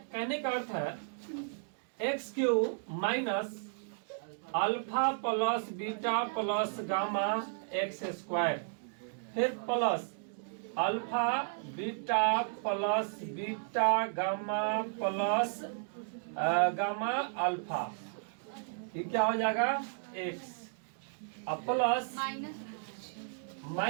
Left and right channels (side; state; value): left; silent; digital silence